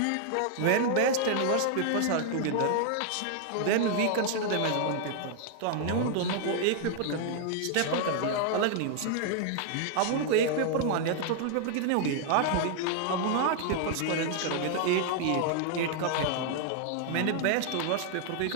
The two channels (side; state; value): both; different; correlation 0.00